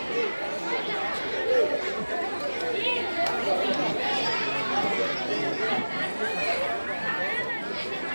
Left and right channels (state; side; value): inverted; both; correlation -1.00